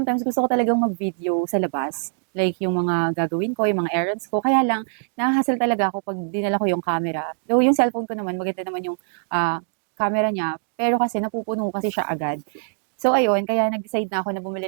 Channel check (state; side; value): silent; left; digital silence